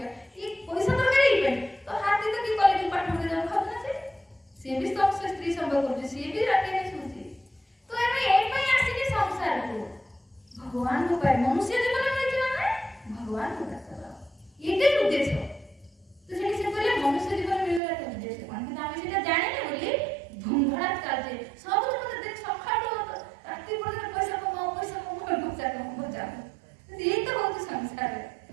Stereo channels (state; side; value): drops out; left; at 17.8 s